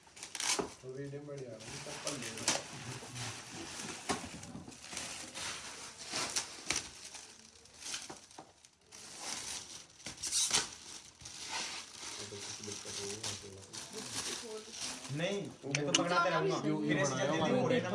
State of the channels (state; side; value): identical; both; correlation 1.00